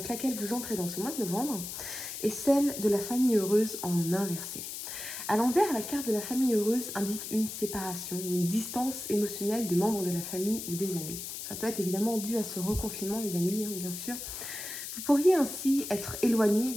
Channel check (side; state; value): left; noise; hiss, 7 dB below the sound